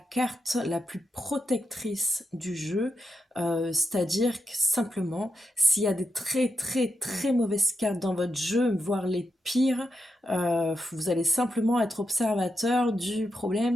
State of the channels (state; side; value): normal; both; correlation 0.86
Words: la plus protectrice du jeu. C'est-à-dire que simplement, s'il y a des très mauvaises cartes dans votre jeu, voire les pires, vous allez simplement être observateur du